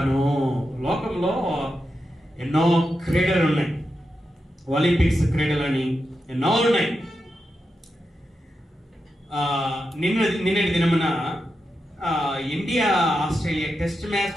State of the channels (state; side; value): normal; both; correlation 0.88